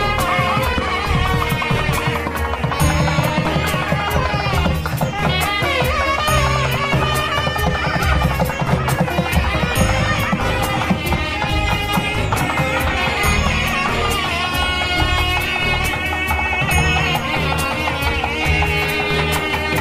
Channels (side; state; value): both; identical; correlation 1.00